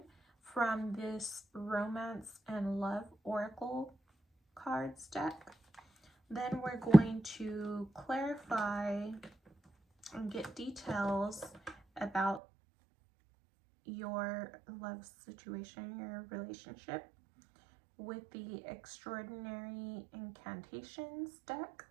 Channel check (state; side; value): drops out; left; at 12.4 s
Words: from this romance and love oracle cards deck. Then we're going to clarify and get details about your love situation, your relationship, with the extraordinary incantations deck.